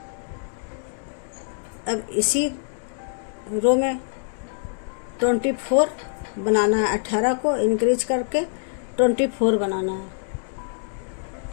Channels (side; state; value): right; silent; digital silence